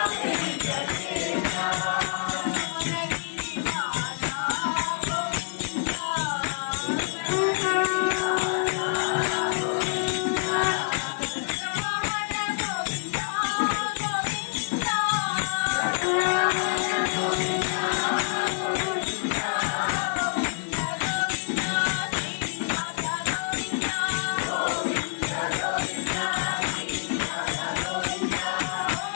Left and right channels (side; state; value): right; silent; 60 dB below the other